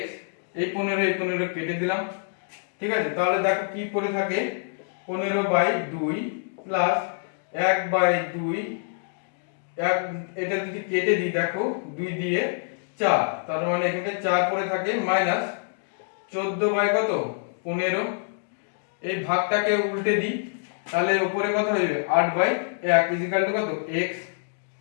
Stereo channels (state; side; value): silent; right; digital silence